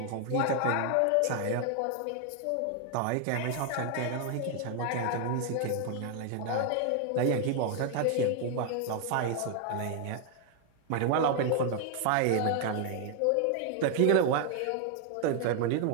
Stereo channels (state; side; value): different; both; correlation 0.00